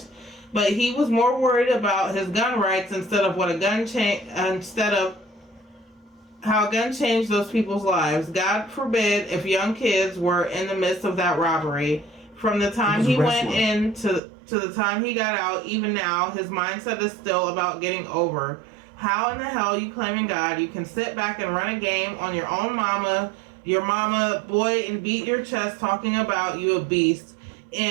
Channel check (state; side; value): drops out; left; at 14.2 s